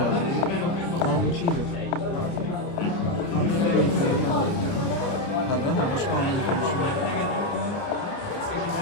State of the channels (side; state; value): right; late; 29 ms